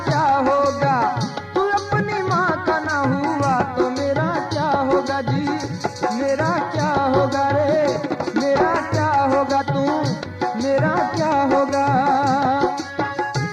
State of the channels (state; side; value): identical; both; correlation 1.00